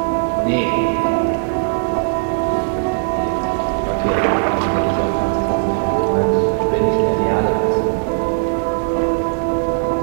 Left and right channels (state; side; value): silent; left; 67 dB below the other